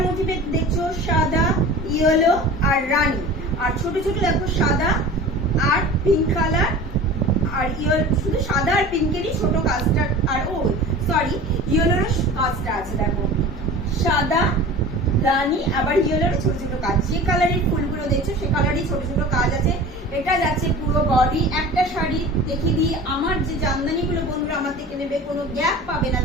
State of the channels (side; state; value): both; normal; correlation 0.38